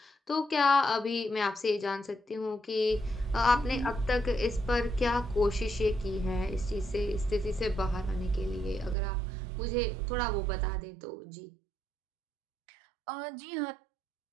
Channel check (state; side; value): drops out; left; at 9.0 s